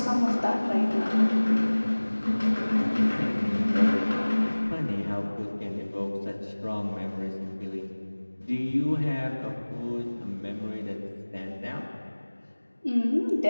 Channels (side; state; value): both; inverted; correlation -1.00